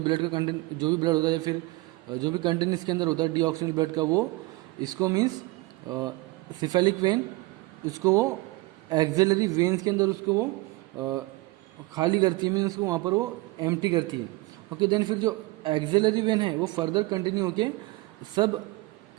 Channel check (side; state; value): left; quieter; 21.8 dB